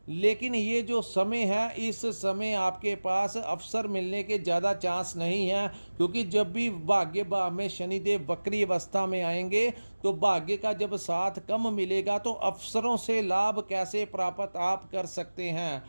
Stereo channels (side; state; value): both; inverted; correlation -1.00